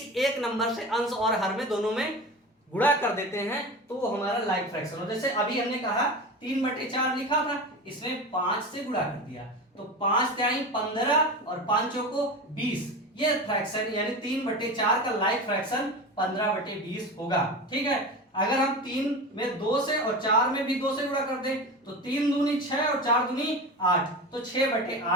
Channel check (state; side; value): normal; both; correlation 0.28